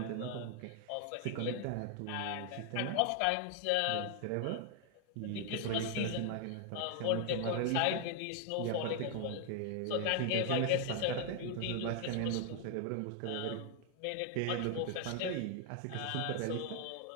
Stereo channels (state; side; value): different; both; correlation 0.00